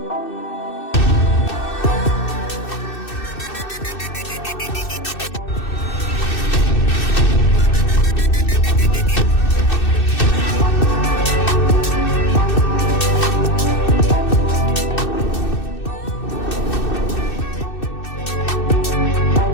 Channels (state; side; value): late; right; 2.6 ms